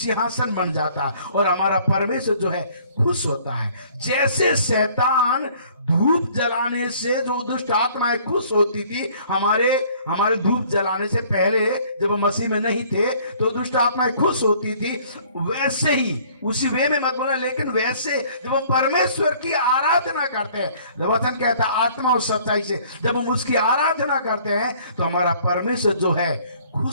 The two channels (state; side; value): inverted; both; correlation -0.56